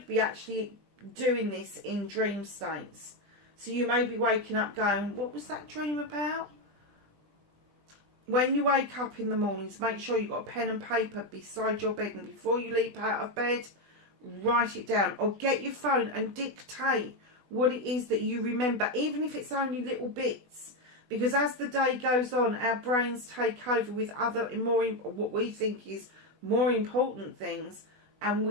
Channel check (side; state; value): left; late; 20 ms